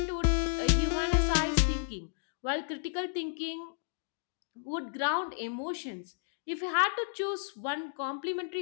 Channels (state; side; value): silent; right; digital silence